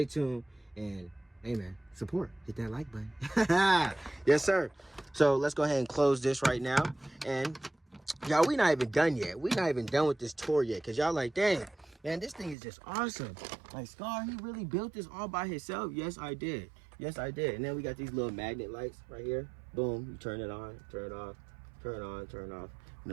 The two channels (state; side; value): drops out; left; at 12.6 s